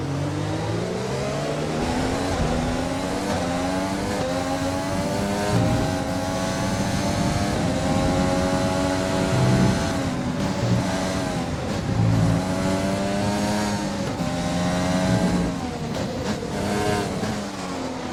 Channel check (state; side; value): identical; both; correlation 1.00